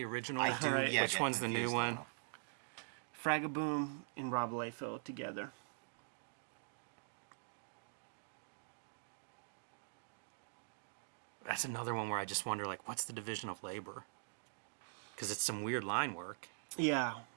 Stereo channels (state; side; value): silent; left; digital silence